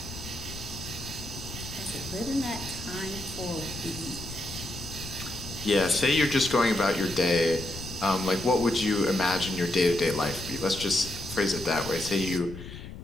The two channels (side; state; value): left; noise; rumble, 12 dB below the sound